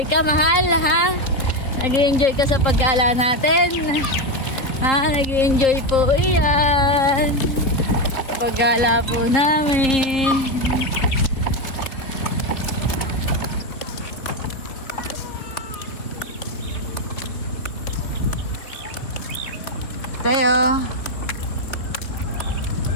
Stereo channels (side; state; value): right; late; 3.9 ms